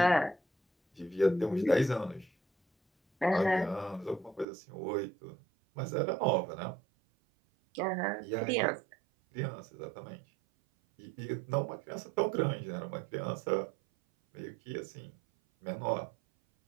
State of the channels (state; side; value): drops out; left; at 4.5 s